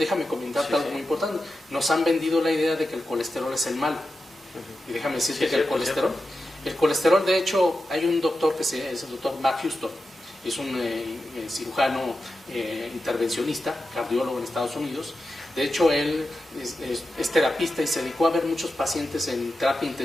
comentarte algo muy importante. Nos han vendido la idea de que el colesterol es el malo. Y déjame decirte que el colesterol, de hecho, hay un doctor es el doctor Mark Houston. es un cirujano intervencionista, cardiólogo en Estados Unidos. De hecho, él es terapista y se dedicó a ver muchos pacientes en terapia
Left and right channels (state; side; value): normal; both; correlation 0.91